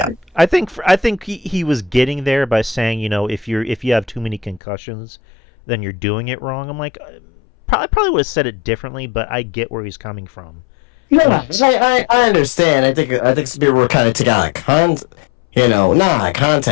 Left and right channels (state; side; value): drops out; right; at 4.6 s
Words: I think he was getting there by saying, if you have too many concussions, then you're doing it wrong. I'm like, probably would have said it differently, but I get where he's coming from. No, I understand. I think some people were kind of taking out of not